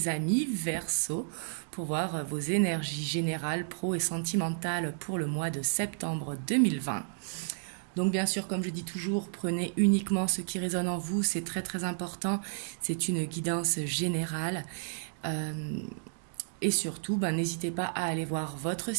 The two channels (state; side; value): silent; left; digital silence